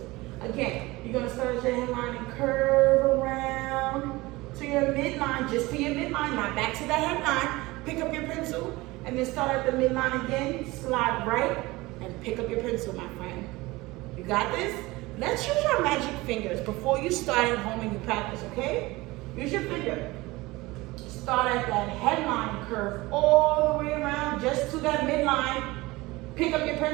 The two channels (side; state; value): left; quieter; 21.0 dB